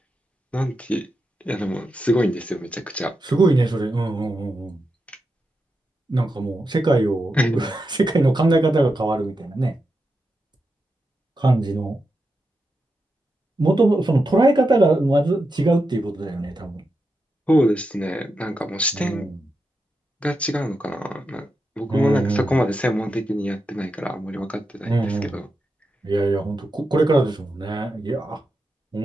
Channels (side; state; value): both; normal; correlation 0.88